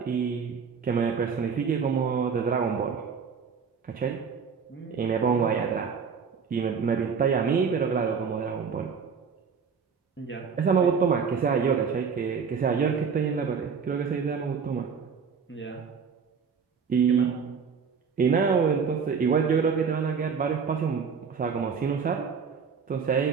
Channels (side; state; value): left; quieter; 6.0 dB